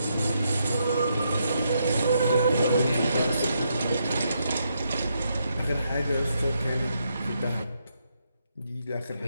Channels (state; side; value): inverted; both; correlation -0.79